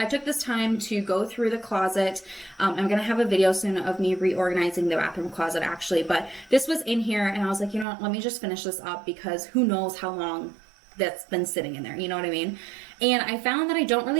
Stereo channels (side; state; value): left; drops out; at 7.9 s